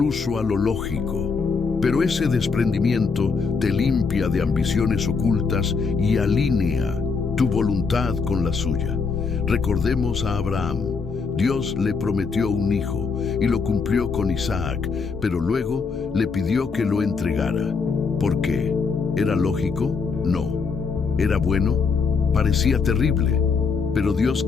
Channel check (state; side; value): quieter; right; 5.0 dB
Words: a lo lógico. Pero ese desprendimiento te limpia de ambiciones ocultas y alinea tu voluntad con la suya. Recordemos a Abraham. Dios le prometió un hijo y lo cumplió con Isaac, pero luego le pidió que lo entregara. ¿Por qué? ¿Era lógico? No. ¿Era bueno? Parecía terrible, pero Dios